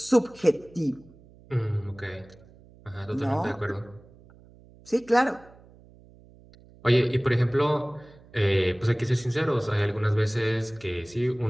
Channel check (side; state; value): right; noise; hum, 25 dB below the sound